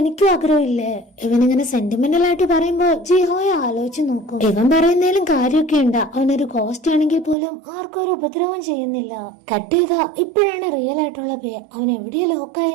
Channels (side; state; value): left; drops out; at 7.4 s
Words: എനിക്കും ആഗ്രഹമില്ലേ. ഇവനിങ്ങനെ സെന്റിമെന്റൽ ആയിട്ട് പറയുമ്പോ ജിഹോയെ ആലോചിച്ച് നോക്കും. ഇവൻ പറയുന്നതിലും കാര്യമൊക്കെ ഉണ്ട്. അവനൊരു ഗോസ്റ്റ് ആണെങ്കിൽ പോലും ആർക്കും ഒരു ഉപദ്രവം ചെയ്യുന്നില്ല. കട്ട് ചെയ്യുക. ഇപ്പോഴാണ് റിയൽ ആയിട്ടുള്ള ബേ അവൻ എവിടെയാ ലോക്കായി